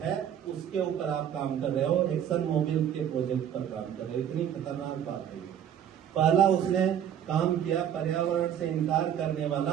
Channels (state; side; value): quieter; left; 9.6 dB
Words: है उसके ऊपर आप काम कर रहे हो, एक्सन मोबिल के प्रोजेक्ट पर काम कर रहे हो। इतनी खतरनाक बात है। पहला उसने काम किया पर्यावरण से इनकार करने